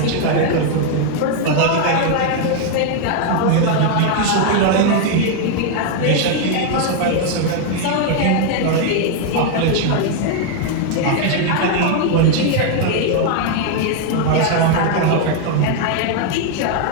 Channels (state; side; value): different; both; correlation 0.00